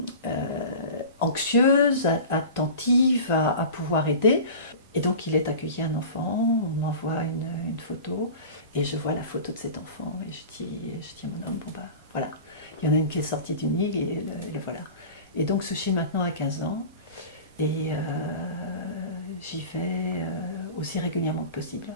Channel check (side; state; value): both; inverted; correlation -0.35